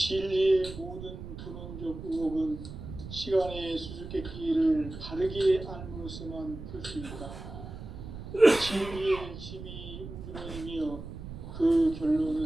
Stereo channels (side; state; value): right; noise; rumble, 11 dB below the sound